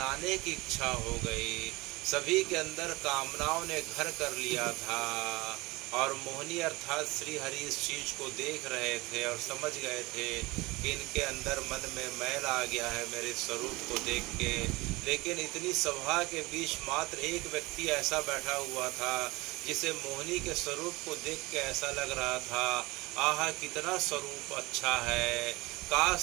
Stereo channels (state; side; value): quieter; left; 22.4 dB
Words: की इच्छा हो गई। सभी के अंदर कामनाओं ने घर कर लिया था, और मोहिनी अर्थात श्री हरि इस चीज़ को देख रहे थे और समझ गए थे कि इनके अंदर मन में मैल आ गया है मेरे स्वरूप को देख के। लेकिन इतनी सभा के बीच मात्र एक व्यक्ति ऐसा बैठा हुआ था जिसे मोहिनी के स्वरूप को देख के ऐसा लग रहा था, आहा कितना स्वरूप अच्छा है,